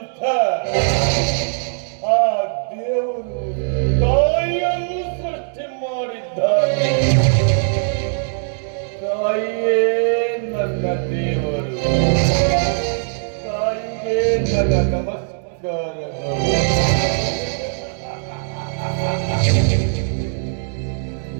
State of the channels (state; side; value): silent; left; digital silence